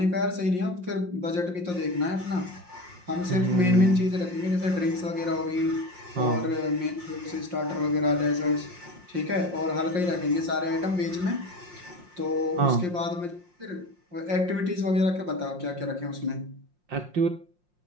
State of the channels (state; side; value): late; left; 5.6 ms